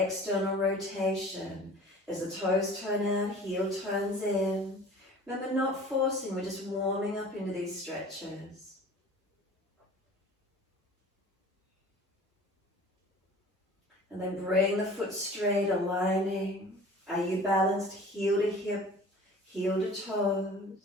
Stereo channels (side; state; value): both; normal; correlation 0.44